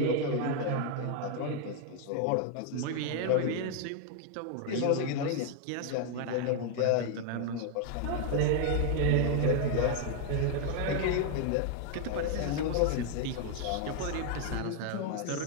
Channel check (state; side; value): different; both; correlation 0.00